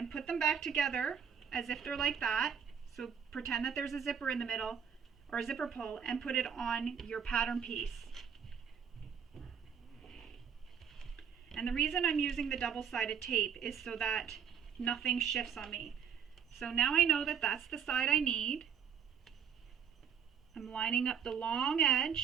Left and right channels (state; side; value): quieter; left; 7.5 dB